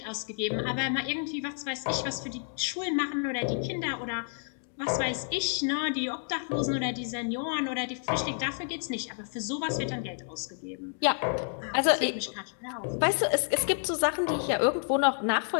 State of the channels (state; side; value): silent; right; 57 dB below the other